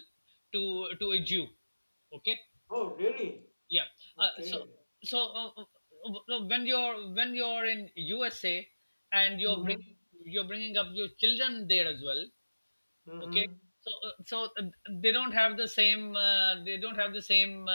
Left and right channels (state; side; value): inverted; both; correlation -1.00